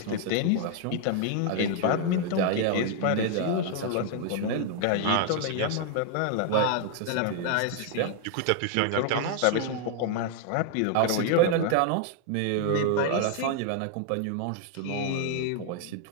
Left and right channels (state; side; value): different; both; correlation 0.00